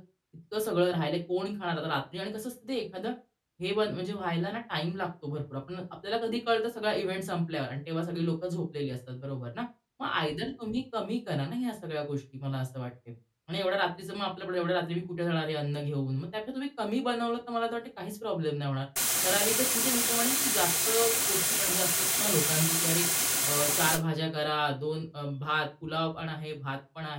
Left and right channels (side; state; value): both; identical; correlation 1.00